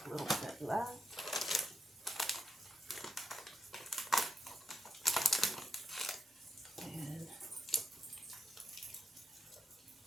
a little bit left.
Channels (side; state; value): both; normal; correlation 0.83